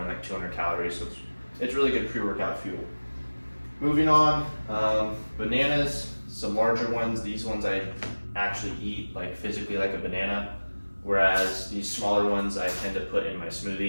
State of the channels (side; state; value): both; inverted; correlation -1.00